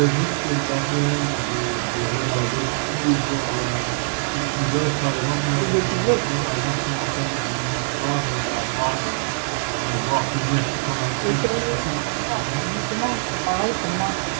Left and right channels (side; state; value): left; silent; 64 dB below the other